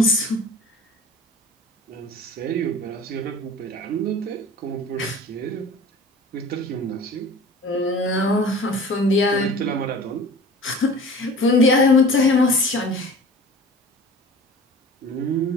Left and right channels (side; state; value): both; normal; correlation 0.41